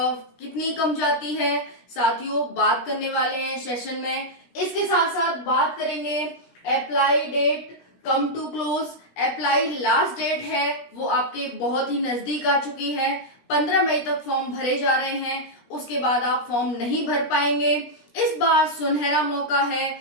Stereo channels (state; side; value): late; right; 16 ms